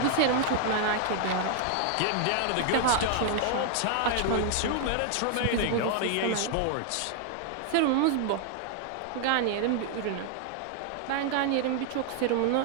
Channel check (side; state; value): both; different; correlation 0.00